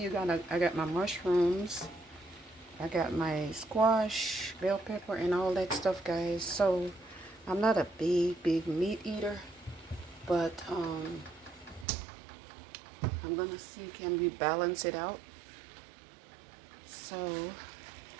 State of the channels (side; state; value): left; drops out; at 11.9 s